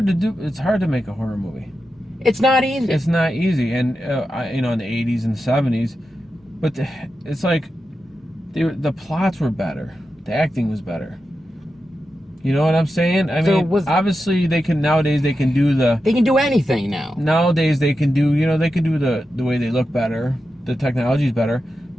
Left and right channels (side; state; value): both; normal; correlation 0.90